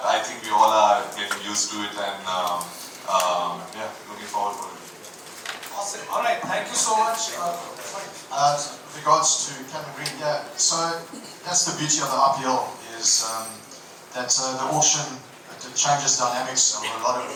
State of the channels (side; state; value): both; identical; correlation 1.00